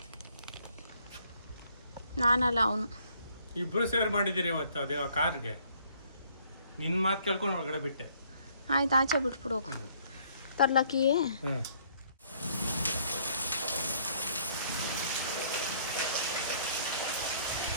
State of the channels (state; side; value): inverted; both; correlation -0.63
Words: ನಾನಲ್ಲ ಅವನು. ಇಬ್ರು ಸೇರ್ ಮಾಡಿದ್ದೀರಿ ಇವತ್ತು ಅದೇ ಆ ಕಾರ್ಗೆ. ನಿನ್ನ ಮಾತು ಕೇಳ್ಕೊಂಡು ಒಳಗಡೆ ಬಿಟ್ಟೆ. ಆಯ್ತು, ಆಚೆ ಬಿಟ್ಬಿಡು ಹೋಗು. ತರ್ಲಕ್ಕಿಯೇ ಹ್ಞೂ